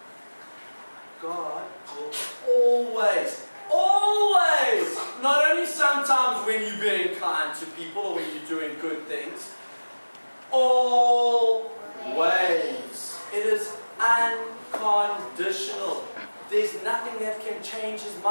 God will always, not only sometimes when you're being kind to people or when you're doing good things, always. It is unconditional. There's nothing that can change his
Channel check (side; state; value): both; inverted; correlation -1.00